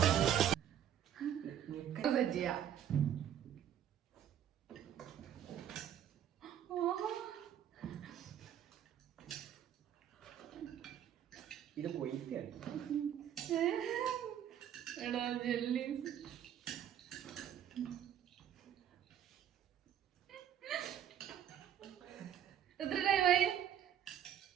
ചെയ്യാം. ഇത് പോയിട്ടാണ്. എടാ ജെല്ലീസ്. എത്ര ടൈമായി?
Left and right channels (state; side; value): quieter; left; 10.1 dB